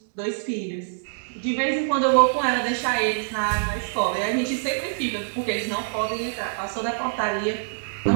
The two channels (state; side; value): silent; left; digital silence